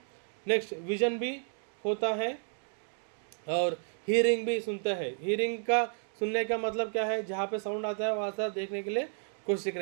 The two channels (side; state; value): left; silent; 56 dB below the other